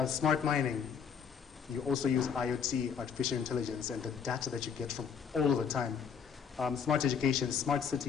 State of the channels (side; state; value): right; quieter; 6.9 dB